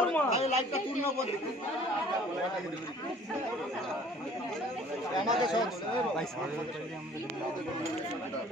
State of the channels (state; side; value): normal; both; correlation 0.52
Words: লাইটটা পূর্ণ করে আমাকে সব